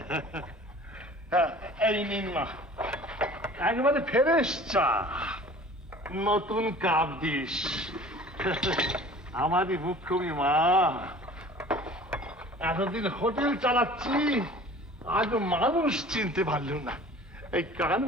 এই নিন মা, একেবারে ফ্রেশ চা, নতুন কাপ দিস। আমারই মুখ্যমী মা, এতদিন হোটেল চালাচ্ছি, আজ মানুষ চিনতে পারল না। এই কান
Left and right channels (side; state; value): both; normal; correlation 0.45